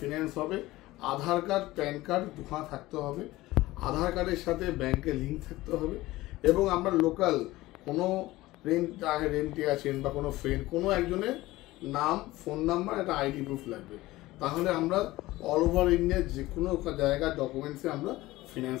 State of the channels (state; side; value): quieter; right; 18.1 dB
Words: হবে। আধার কার্ড, প্যান কার্ড দুখানা থাকতে হবে, আধার কার্ডের সাথে ব্যাংকের লিঙ্ক থাকতে হবে, এবং আমরা লোকাল কোনো রেন্টে আছেন বা কোনো ফ্রেন্ড, কোনো একজনের নাম, ফোন নাম্বার, একটা আইডি প্রুফ লাগবে। তাহলে আমরা অল ওভার ইন্ডিয়ার যে কোনো জায়গার ডকুমেন্টসে আমরা ফিনান্স